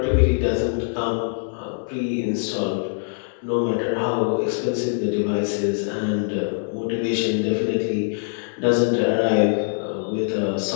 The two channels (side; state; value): right; silent; digital silence